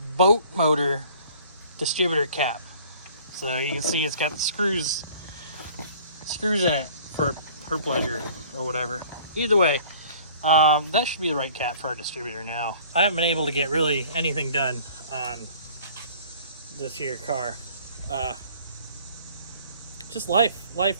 boat motor distributor cap. So you can see it's got the screws in it for her pleasure or whatever. Either way, that should be the right cap for our distributor now. I haven't been able to get really anything done on this here car. Just life,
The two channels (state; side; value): inverted; both; correlation -0.51